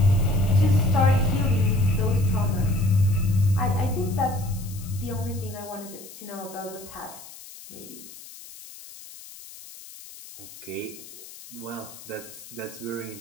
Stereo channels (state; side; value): noise; left; hiss, 17 dB below the sound